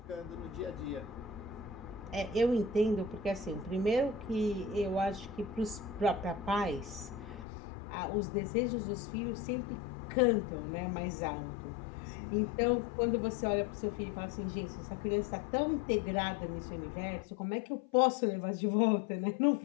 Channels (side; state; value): right; drops out; at 7.5 s